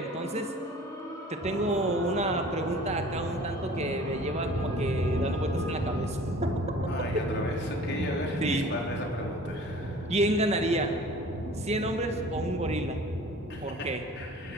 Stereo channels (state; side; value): normal; both; correlation 0.46